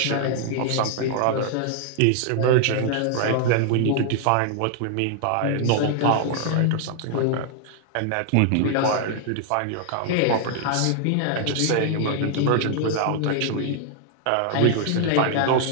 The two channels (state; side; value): different; both; correlation 0.00